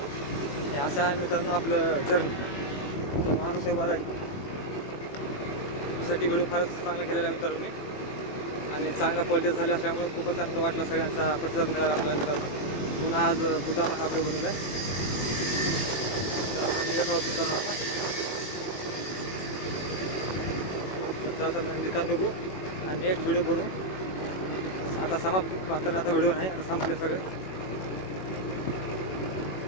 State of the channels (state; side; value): late; right; 21 ms